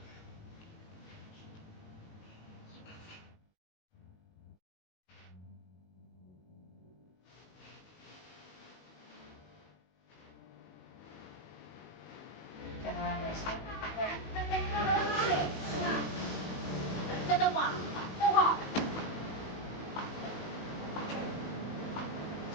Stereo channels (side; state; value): right; late; 19 ms